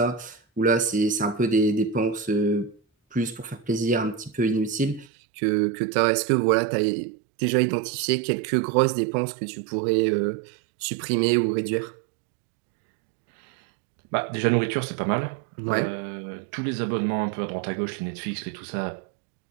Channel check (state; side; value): drops out; left; at 5.1 s